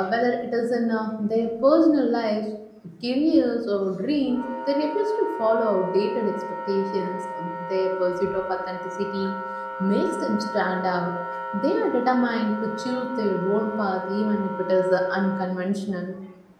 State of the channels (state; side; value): identical; both; correlation 1.00